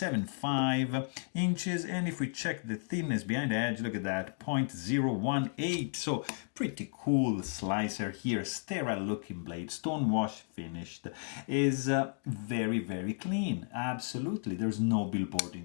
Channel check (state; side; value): silent; right; 55 dB below the other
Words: inches, and if we check the thinness behind the edge, look at that, 0.018. So pretty cool slicer here, sterile looking blade, stone wash finished, is very, very clean. Absolutely, there's no billboarding